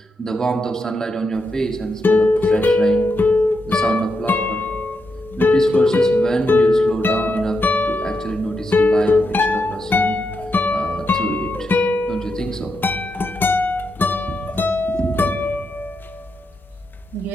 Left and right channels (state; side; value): normal; both; correlation 0.84